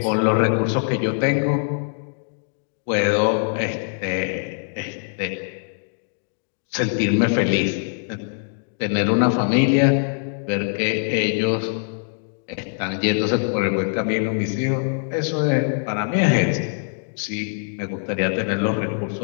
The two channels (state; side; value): silent; right; digital silence